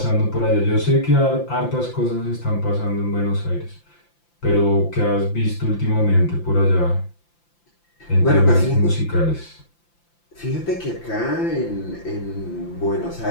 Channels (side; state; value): right; late; 5.8 ms